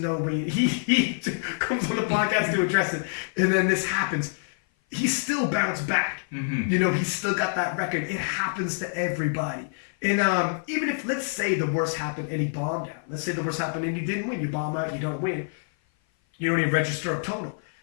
way. He comes on the podcast to address it, and then this happens. He still bounced back. Mm-hmm. You know, he's still got that record. It happens to everybody. And even if, let's say the worst happened and he bombed out. Let's say the worst happened and he didn't win. You bomb out, you don't win. You don't even register a total.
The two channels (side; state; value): right; silent; 56 dB below the other